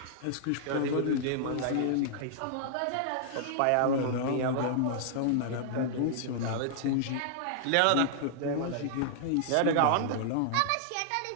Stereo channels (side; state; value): both; different; correlation -0.01